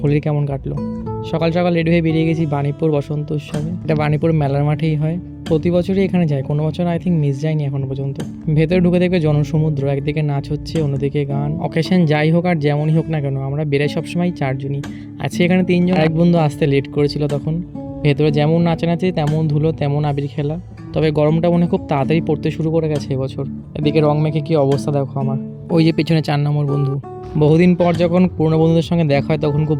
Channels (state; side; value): identical; both; correlation 1.00